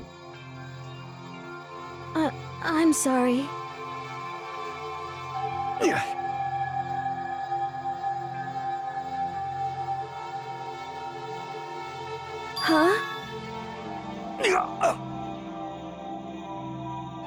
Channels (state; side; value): identical; both; correlation 1.00